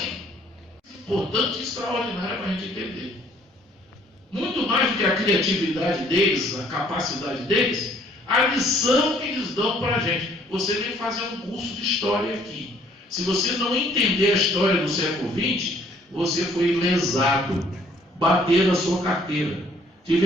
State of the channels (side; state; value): both; normal; correlation 0.61